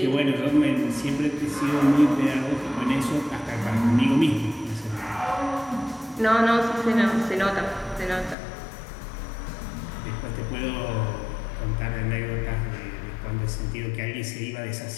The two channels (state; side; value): drops out; right; at 8.3 s